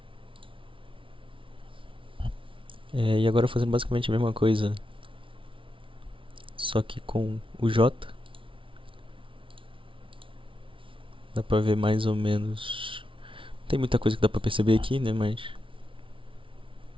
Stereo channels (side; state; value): left; late; 0.25 ms